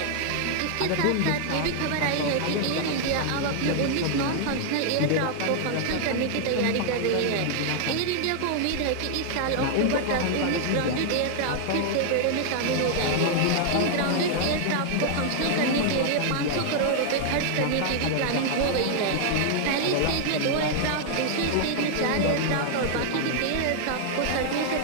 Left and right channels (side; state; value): both; different; correlation 0.00